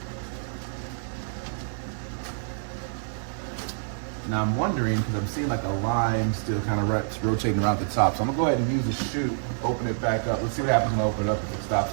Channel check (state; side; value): silent; left; digital silence